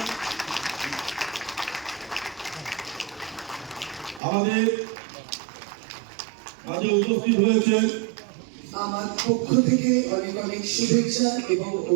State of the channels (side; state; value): left; drops out; at 4.2 s